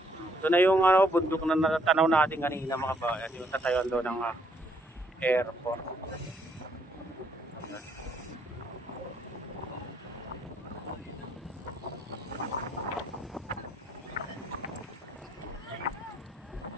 Ito na yung bundok na natanaw natin kanina mga kabayan. Yung tatayuan doon ng airport.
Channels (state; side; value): normal; both; correlation 0.69